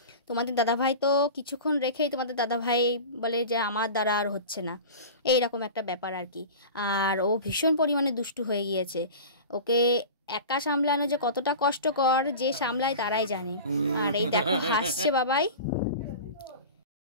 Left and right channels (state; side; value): inverted; both; correlation -0.34